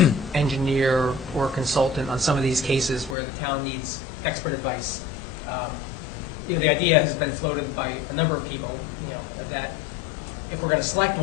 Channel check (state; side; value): drops out; right; at 3.2 s